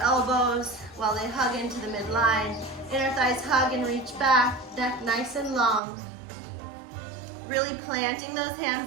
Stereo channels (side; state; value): left; drops out; at 5.8 s